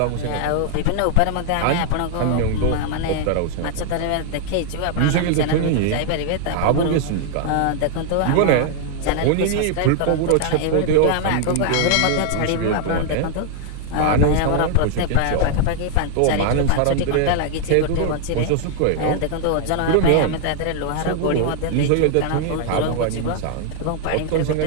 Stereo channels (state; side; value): different; both; correlation 0.00